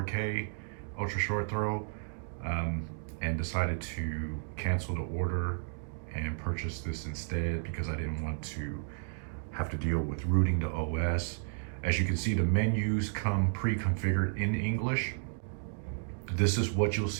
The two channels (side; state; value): left; silent; digital silence